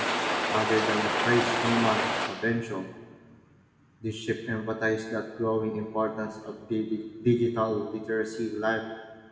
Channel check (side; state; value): both; identical; correlation 1.00